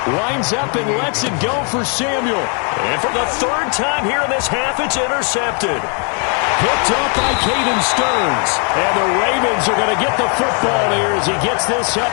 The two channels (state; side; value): quieter; right; 39.0 dB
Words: winds up and lets it go for Samuel. And for the 3rd time here in this half, it's intercepted. Picked up by Caden Stearns. And the Ravens are going to get the football here as he gets this